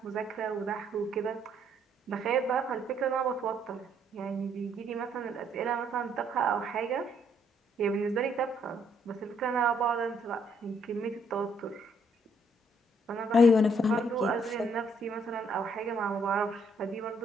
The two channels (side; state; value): both; normal; correlation 0.69